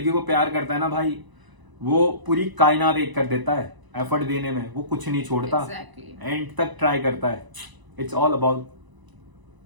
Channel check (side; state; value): left; late; 1.0 ms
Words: को प्यार करता है ना भाई, वो पूरी कायनात एक कर देता है एफर्ट देने में। वो कुछ नहीं छोड़ता, एंड तक ट्राई करता है। It's all about